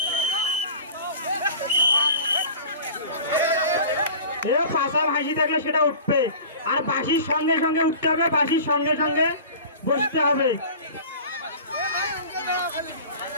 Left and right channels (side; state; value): both; inverted; correlation -0.39